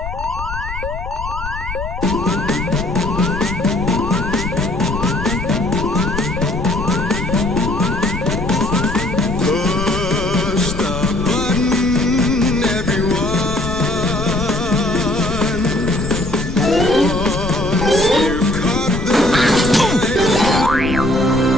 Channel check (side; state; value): left; noise; rumble, 8 dB below the sound